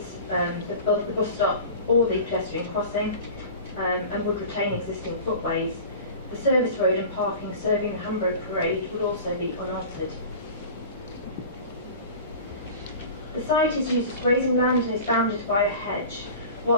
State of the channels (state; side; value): inverted; both; correlation -0.37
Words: both the bus stop or the pedestrian crossing, and would retain existing footways. The service road and parking serving the Hamburg Parade would also be unaltered. The site is used as grazing land and is bounded by a hedge.